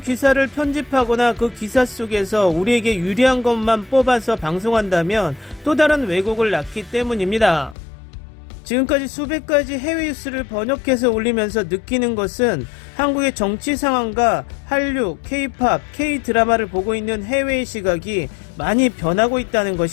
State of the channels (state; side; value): drops out; right; at 7.8 s